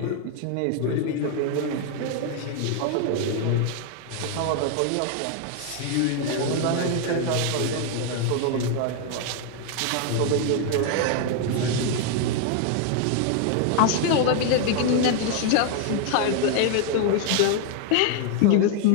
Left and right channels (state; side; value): different; both; correlation 0.00